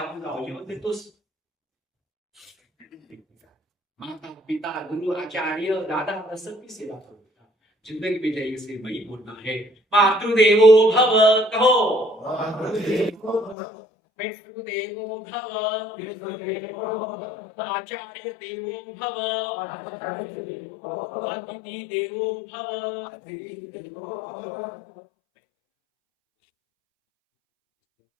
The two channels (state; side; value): drops out; right; at 13.6 s